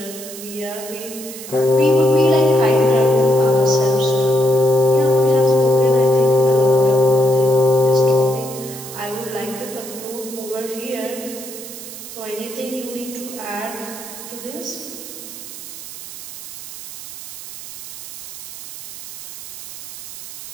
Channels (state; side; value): noise; right; hiss, 11 dB below the sound